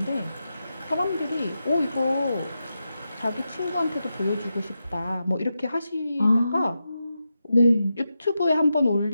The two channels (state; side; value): inverted; both; correlation -0.88